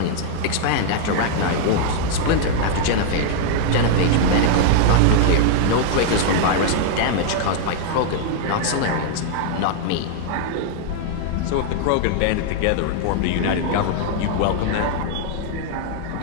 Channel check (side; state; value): both; different; correlation 0.00